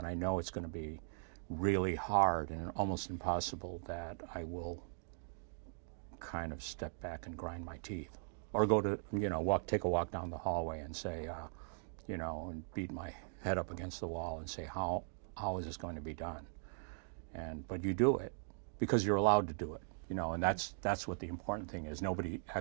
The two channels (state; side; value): silent; left; digital silence